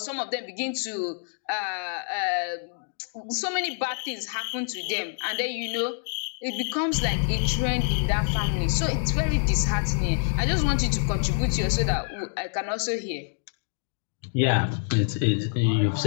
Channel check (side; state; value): right; silent; digital silence